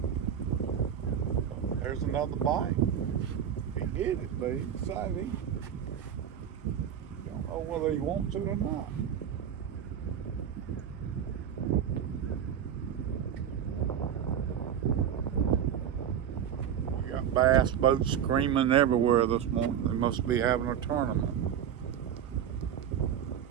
There's another bite. He hit it, but he decided he don't know whether he wants it or not. We got bass boats screaming everywhere this morning. They must be having a tournament.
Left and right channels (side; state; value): left; quieter; 9.0 dB